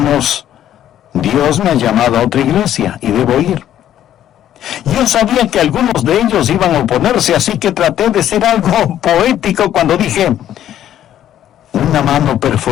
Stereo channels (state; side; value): quieter; right; 11.3 dB